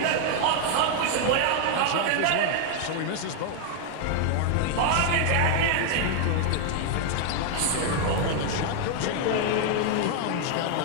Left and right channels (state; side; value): different; both; correlation 0.00